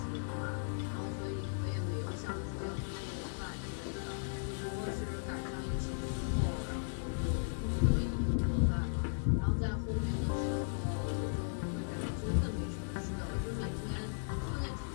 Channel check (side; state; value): right; silent; 53 dB below the other